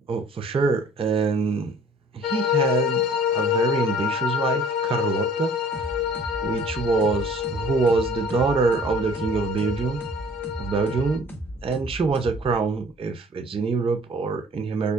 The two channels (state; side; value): normal; both; correlation 0.52